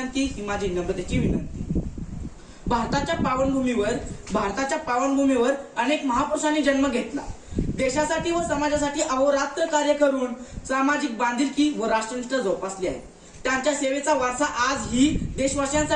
भारताच्या पावनभूमीवर अनेक महापुरुषांनी जन्म घेतला. देशासाठी व समाजासाठी अहोरात्र कार्य करून सामाजिक बांधिलकी व राष्ट्रनिष्ठा जोपासली आहे. त्यांच्या सेवेचा वारसा आजही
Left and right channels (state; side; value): identical; both; correlation 1.00